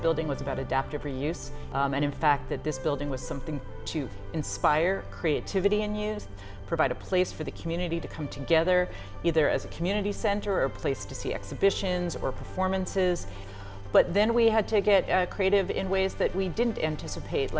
was about adaptive reuse, and in fact that this building was something to inspire creativity in youth, provide a place for the community to come together, either as a community center or a place to see exhibitions or performances. But then we had to get creative in ways that we didn't anticipate,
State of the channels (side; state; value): both; identical; correlation 1.00